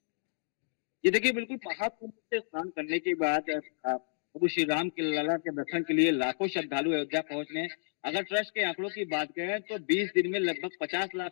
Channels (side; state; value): right; silent; digital silence